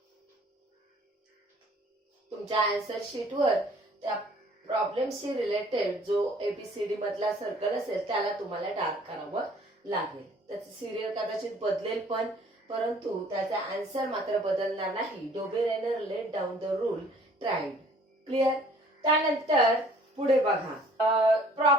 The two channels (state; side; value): normal; both; correlation 0.55